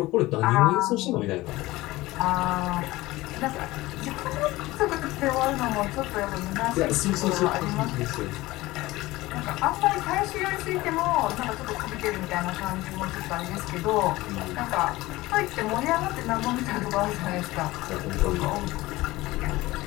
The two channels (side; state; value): right; quieter; 19.0 dB